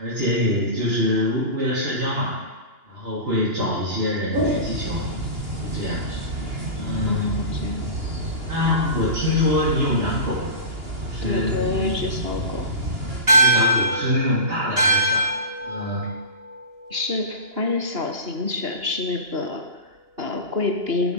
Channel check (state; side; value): late; left; 2.9 ms